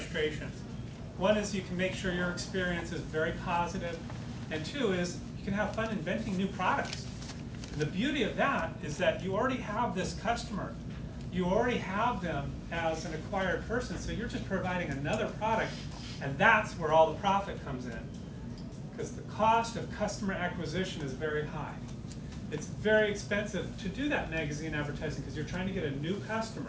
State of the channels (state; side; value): identical; both; correlation 1.00